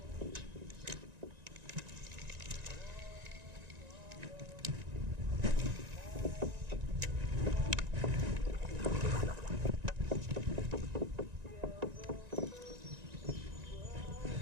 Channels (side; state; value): left; late; 1.9 ms